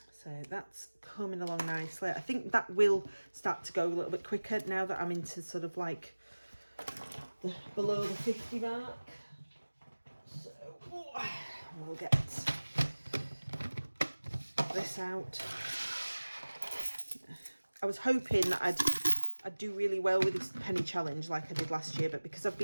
So that's coming along nicely. I think that will start to go a little bit quicker now that I'm into sort of like below the 50 mark. So we'll get this out. I was hoping that I'd do really well with this penny challenge like I did last year, but because I've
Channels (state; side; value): inverted; both; correlation -1.00